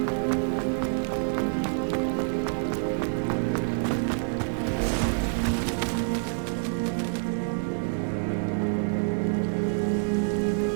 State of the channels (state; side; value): silent; left; digital silence